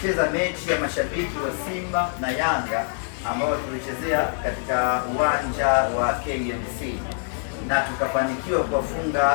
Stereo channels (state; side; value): silent; right; digital silence